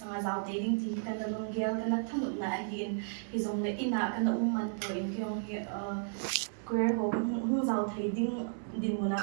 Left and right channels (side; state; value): left; silent; 55 dB below the other